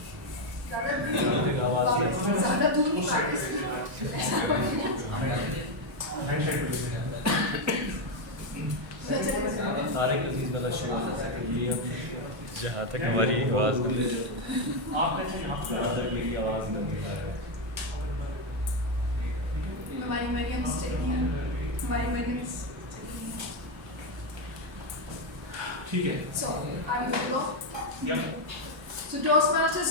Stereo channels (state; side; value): late; left; 1.3 ms